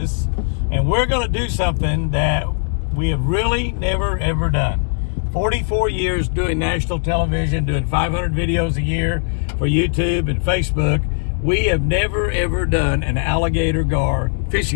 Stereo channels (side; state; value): right; silent; 66 dB below the other